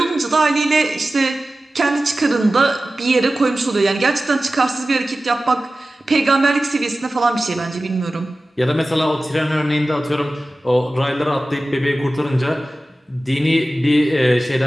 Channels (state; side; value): normal; both; correlation 0.96